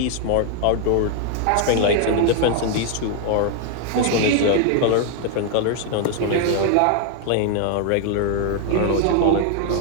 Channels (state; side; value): different; both; correlation 0.00